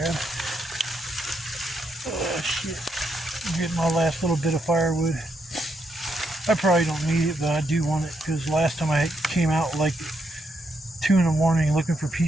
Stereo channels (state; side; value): normal; both; correlation 0.79